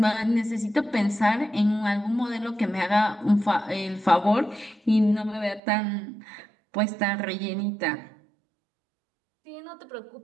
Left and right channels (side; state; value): left; drops out; at 5.6 s